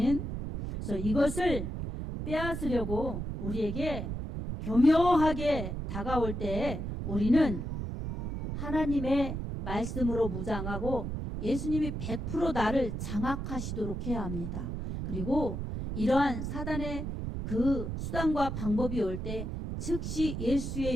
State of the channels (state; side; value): noise; right; rumble, 4 dB below the sound